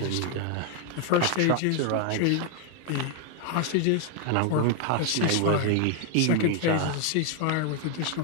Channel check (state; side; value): different; both; correlation 0.00